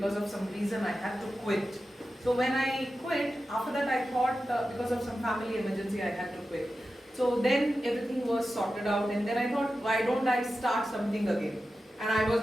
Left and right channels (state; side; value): normal; both; correlation 0.92